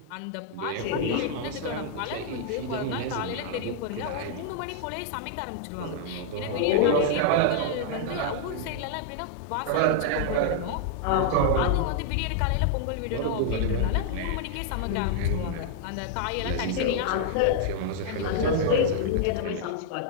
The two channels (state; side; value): different; both; correlation -0.01